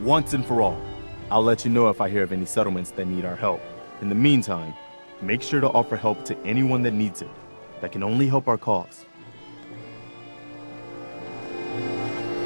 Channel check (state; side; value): inverted; both; correlation -1.00